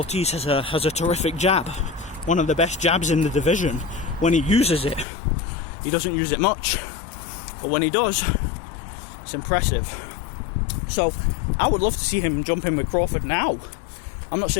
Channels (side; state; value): right; drops out; at 5.1 s